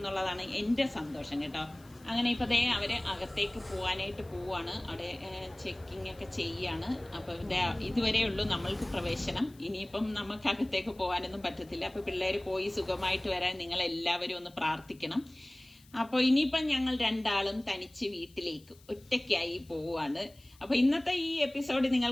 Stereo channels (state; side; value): noise; left; hiss, 27 dB below the sound